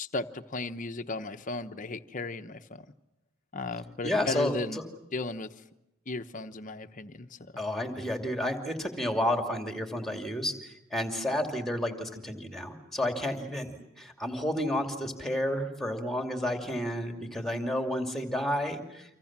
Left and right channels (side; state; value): both; normal; correlation 0.69